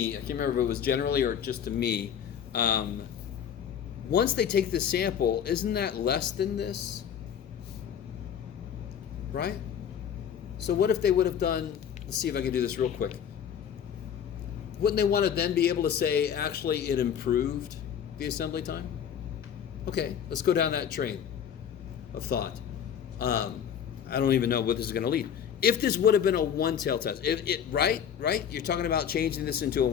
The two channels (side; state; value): right; quieter; 8.5 dB